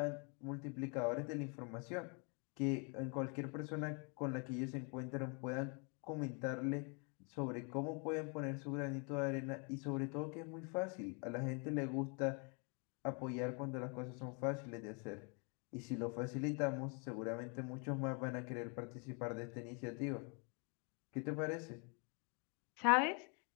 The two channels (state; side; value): quieter; right; 35.5 dB